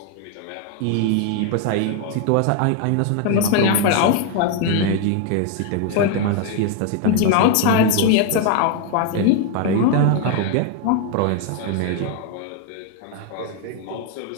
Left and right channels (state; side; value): different; both; correlation 0.00